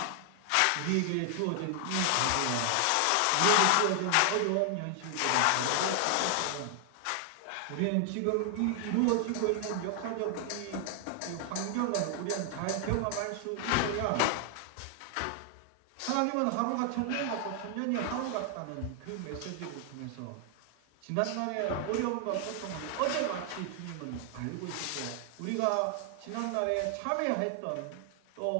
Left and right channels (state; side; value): different; both; correlation 0.00